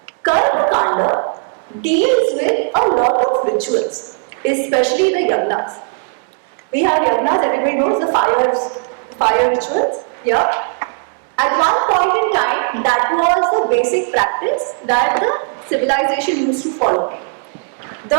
Karma Kanda deals with a lot of rituals, especially the yagnas. We have yagnas, everybody knows the fire rituals. Yeah. At one point in time, that was the basic practice that the civilization used to follow.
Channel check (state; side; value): silent; left; 60 dB below the other